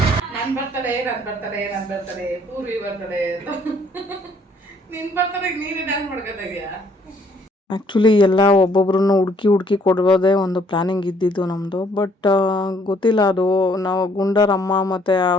ನಾನು ಬರ್ತಾಳೆ ಪೂರ್ವಿ ಬರ್ತಾಳೆ ನಿನ್ ಬರ್ತಾಳೆ ನೀನೇ ಡ್ಯಾನ್ಸ್ ಮಾಡ್ಕೊತಾಯಿದ್ಯಾ. ಆ್ಯಕ್ಚುಲಿ ಎಲ್ಲ ಒಬ್ಬೊಬ್ರನ್ನ ಹುಡುಕಿ ಕೊಡೋದೇ ಒಂದು ಪ್ಲ್ಯಾನಿಂಗ್ ಇದ್ದಿದ್ದು ನಮ್ಮದು. ಬಟ್ ಗೊತ್ತಿಲ್ಲ, ಅದು ನಾವು ಗುಂಡರ ಅಮ್ಮ ಮತ್ತು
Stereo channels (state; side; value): normal; both; correlation 0.64